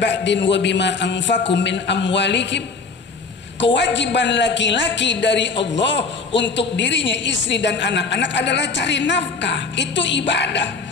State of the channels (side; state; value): right; quieter; 4.5 dB